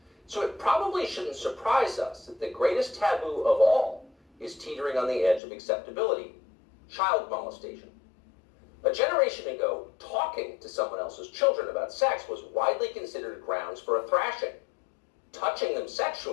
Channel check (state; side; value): drops out; right; at 5.4 s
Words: So it probably shouldn't surprise us that the greatest taboo of all is teetering on the edge of acceptability: child molestation. A generation ago, talking to someone else's children about sex was widely considered grounds for a thrashing. Touching them